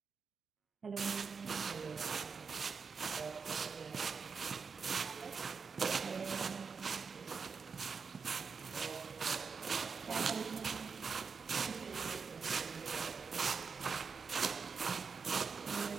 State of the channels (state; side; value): quieter; left; 5.5 dB